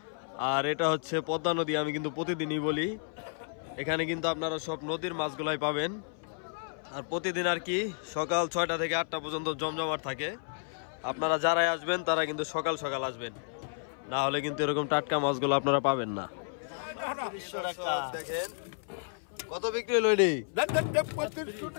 আর এটা হচ্ছে পদ্মা নদী, আমি কিন্তু প্রতিদিনই বলি। এখানে কিন্তু আপনারা সব নদীর মাছগুলাই পাবেন। আর প্রতিদিন আর কি সকাল 6টা থেকে 8টা পর্যন্ত জমজমাট থাকে। আপনারা যারাই আসবেন তারা কিন্তু সকাল সকাল আসবেন, না হলে কিন্তু এরকম টাটকা মাছগুলো আপনারা পাবেন না। দেখেন কত বিক্রি হলো এটি,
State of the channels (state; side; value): silent; right; 57 dB below the other